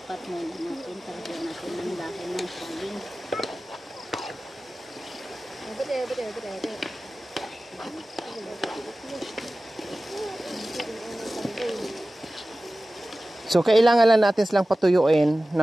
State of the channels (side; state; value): both; normal; correlation 0.96